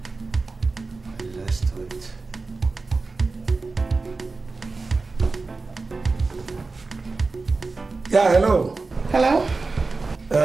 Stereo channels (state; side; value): quieter; left; 3.8 dB